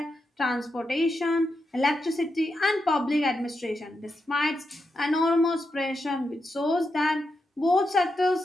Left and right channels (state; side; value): normal; both; correlation 0.86